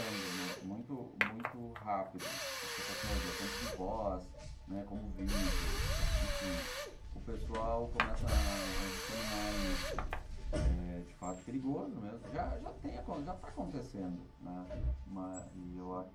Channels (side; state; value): both; identical; correlation 1.00